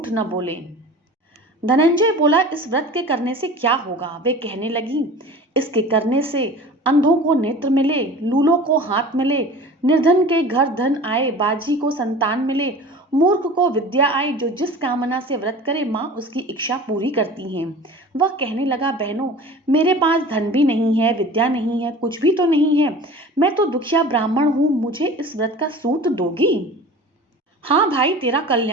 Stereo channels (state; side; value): normal; both; correlation 0.39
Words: न बोलें। धनंजय बोला, इस व्रत के करने से क्या होगा? वे कहने लगी, इसके करने से अंधों को नेत्र मिले, लूलों को हाथ मिले, निर्धन के घर धन आए, बाजी को संतान मिले, मूर्ख को विद्या आए। जो जिस कामना से व्रत करे माँ उसकी इच्छा पूरी करती हैं। वह कहने लगा, बहनों, मेरे पास धन भी नहीं है, विद्या नहीं है, कुछ भी तो नहीं है, मैं तो दुखिया ब्राह्मण हूँ, मुझे इस व्रत का सूत दोगी? हाँ भाई, तेरा